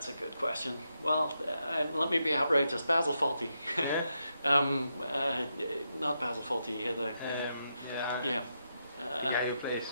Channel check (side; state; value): both; inverted; correlation -0.84